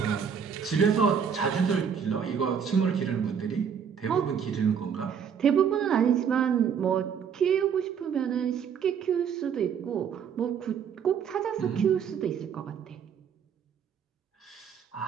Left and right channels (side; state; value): left; quieter; 7.3 dB